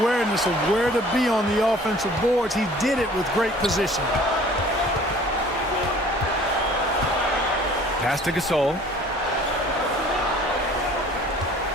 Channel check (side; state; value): both; normal; correlation 0.51